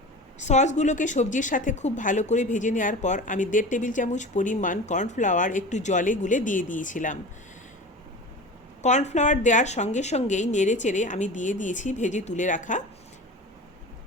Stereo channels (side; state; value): both; normal; correlation 0.34